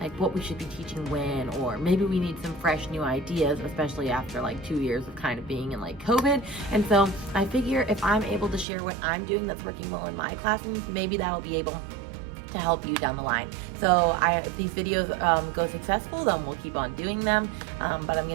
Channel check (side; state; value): left; drops out; at 8.7 s